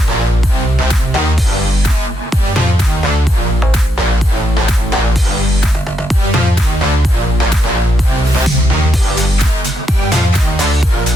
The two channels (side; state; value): both; normal; correlation 0.80